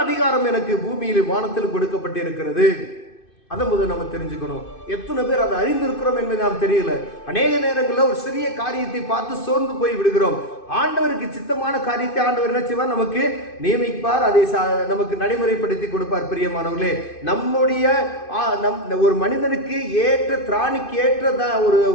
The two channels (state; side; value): late; right; 2.5 ms